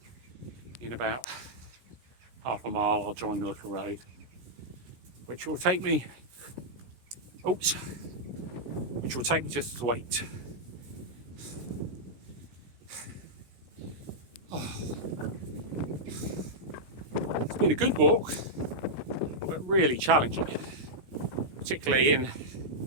in about half a mile I'll join the little road, which will take me just to wait. It's been a good walk, but really challenging, particularly in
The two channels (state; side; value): late; left; 16 ms